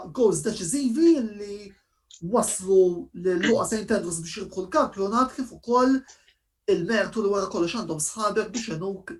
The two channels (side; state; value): both; identical; correlation 1.00